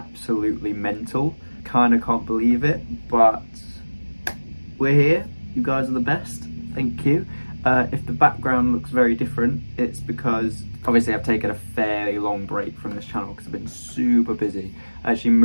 mental. Kind of can't believe it, but we're here. You guys are the best. Thank you. If the background looks very different, it's because obviously I've taken a fairly long break from this channel because I've been super busy. I actually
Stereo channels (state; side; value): inverted; both; correlation -1.00